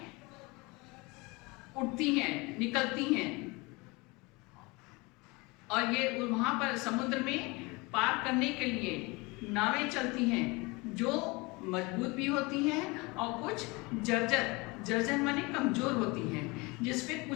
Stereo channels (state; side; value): quieter; right; 25.6 dB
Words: उठती हैं, निकलती हैं, और ये वहां पर समुद्र में पार करने के लिए नावें चलती हैं, जो मजबूत भी होती हैं और कुछ जर्जर, जर्जर माने कमजोर होती हैं, जिसपे